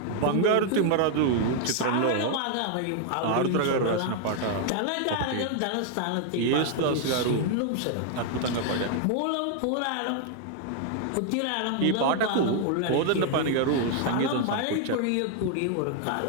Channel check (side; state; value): both; different; correlation 0.00